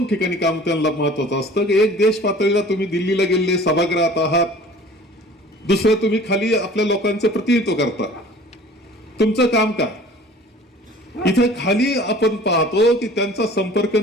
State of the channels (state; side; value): normal; both; correlation 0.47